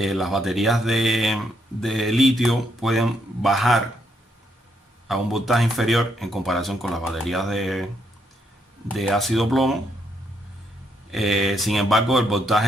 baterías de litio pueden bajar a un voltaje inferior en comparación con las baterías de ácido plomo. Sin embargo, el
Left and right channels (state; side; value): normal; both; correlation 0.75